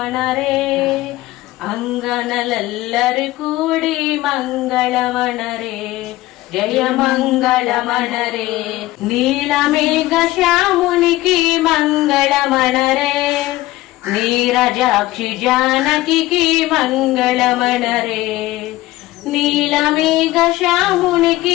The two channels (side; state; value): right; quieter; 17.3 dB